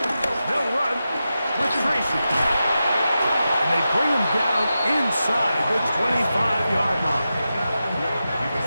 They'll run with Tracy. And they bring him down inside the 25-yard line.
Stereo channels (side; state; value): both; inverted; correlation -0.91